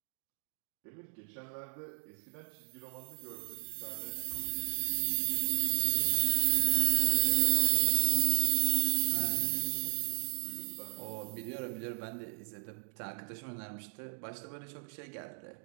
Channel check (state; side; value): silent; left; digital silence